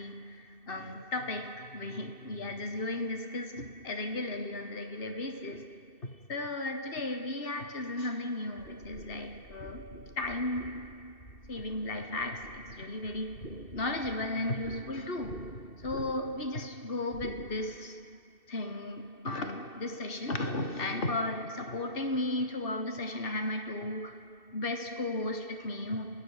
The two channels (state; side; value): late; right; 2.7 ms